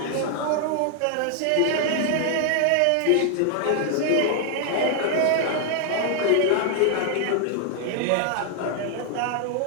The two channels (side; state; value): both; different; correlation 0.00